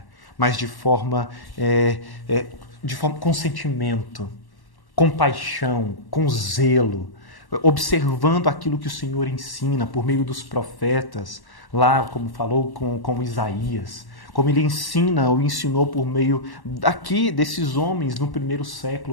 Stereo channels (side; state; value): right; late; 1.1 ms